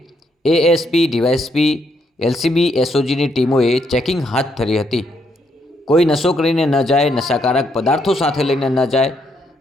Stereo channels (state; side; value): normal; both; correlation 0.75